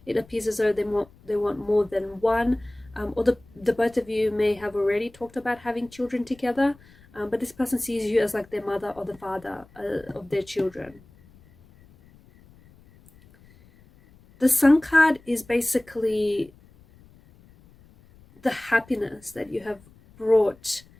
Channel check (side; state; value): left; noise; rumble, 27 dB below the sound